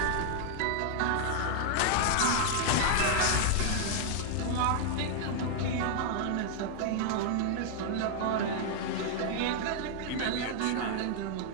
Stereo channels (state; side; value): different; both; correlation 0.00